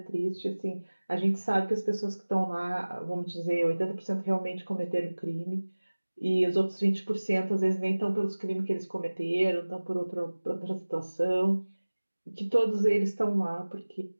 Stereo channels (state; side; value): inverted; both; correlation -1.00